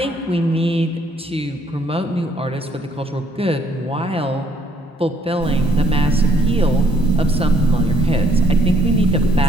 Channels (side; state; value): both; normal; correlation 0.66